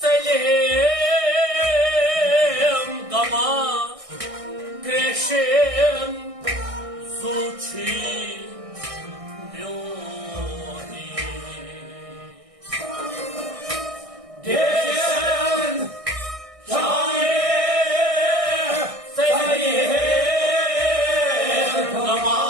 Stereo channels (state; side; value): late; left; 1.6 ms